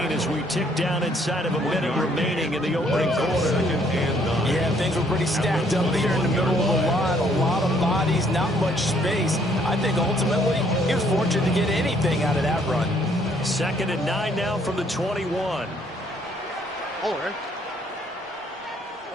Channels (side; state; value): both; normal; correlation 0.65